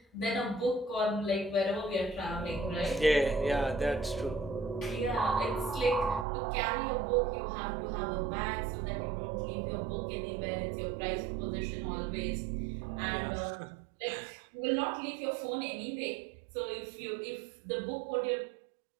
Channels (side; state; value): left; drops out; at 6.2 s